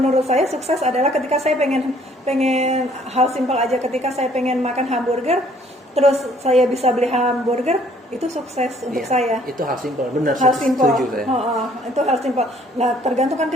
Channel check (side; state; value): both; normal; correlation 0.60